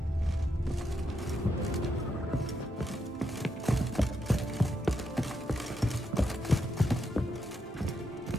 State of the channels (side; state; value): both; normal; correlation 0.81